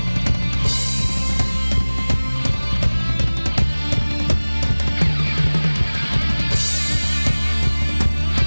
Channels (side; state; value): both; inverted; correlation -1.00